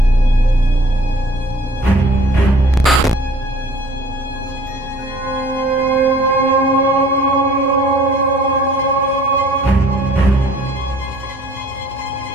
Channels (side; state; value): both; normal; correlation 0.53